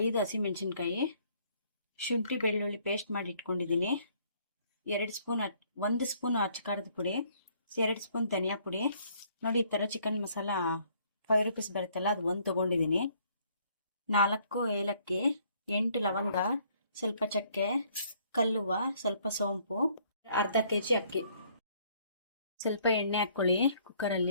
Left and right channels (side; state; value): both; inverted; correlation -0.64